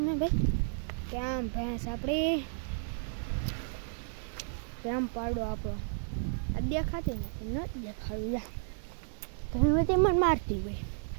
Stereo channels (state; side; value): silent; left; 56 dB below the other